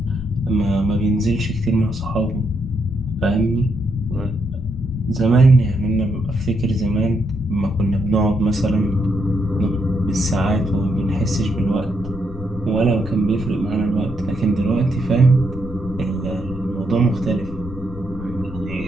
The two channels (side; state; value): left; noise; rumble, 12 dB below the sound